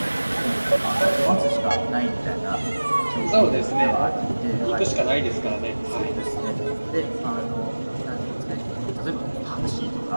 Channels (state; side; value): inverted; both; correlation -1.00